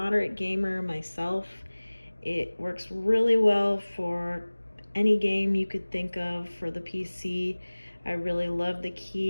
gamer myself. It works really well for any game you could think of for the PC. I really love the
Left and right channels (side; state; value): both; inverted; correlation -1.00